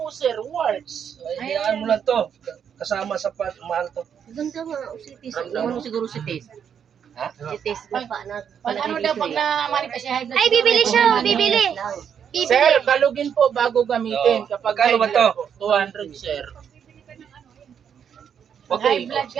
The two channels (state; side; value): quieter; left; 8.0 dB